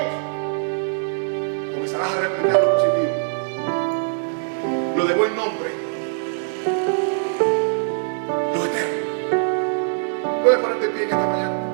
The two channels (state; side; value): silent; left; 64 dB below the other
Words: Comenzarás a replicar lo positivo, lo de buen nombre, lo eterno. Puedes ponerte en pie en esta mañana